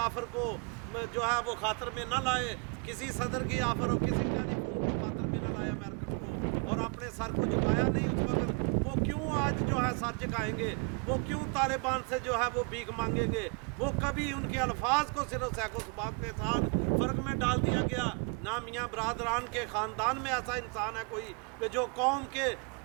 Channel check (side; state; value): left; quieter; 34.1 dB